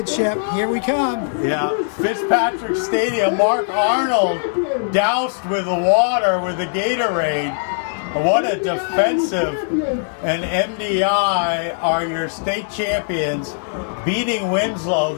Here we come. Yeah, Fitzpatrick Stadium. Mark Arnold doused with the water with the Gatorade. What a defensive. And MDI are your state champions, beating Winslow,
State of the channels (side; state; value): right; silent; 66 dB below the other